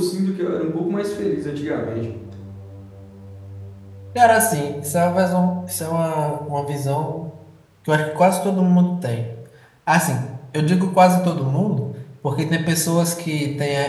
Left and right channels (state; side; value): identical; both; correlation 1.00